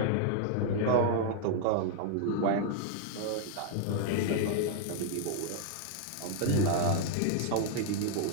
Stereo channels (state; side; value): different; both; correlation 0.00